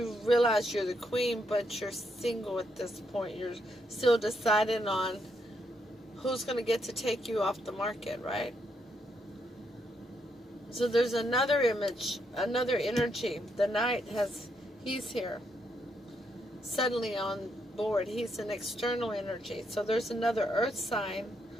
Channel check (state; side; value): normal; both; correlation 0.77